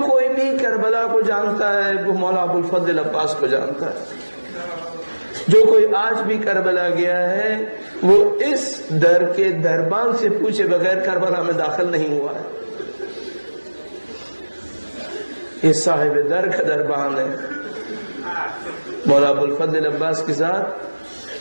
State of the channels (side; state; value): both; inverted; correlation -1.00